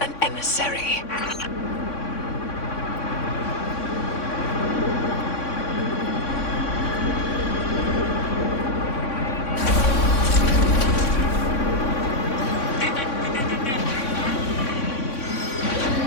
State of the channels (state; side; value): late; right; 3.6 ms